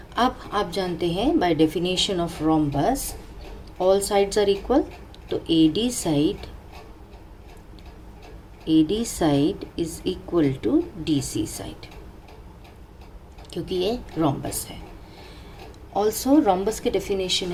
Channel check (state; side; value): identical; both; correlation 1.00